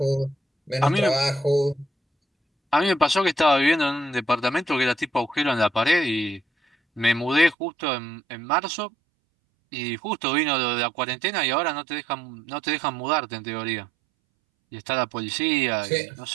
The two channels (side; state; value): left; drops out; at 7.6 s